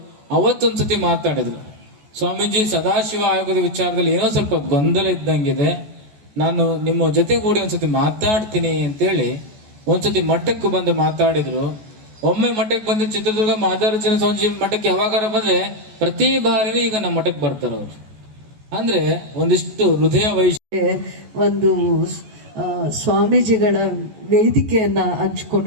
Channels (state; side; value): late; left; 14 ms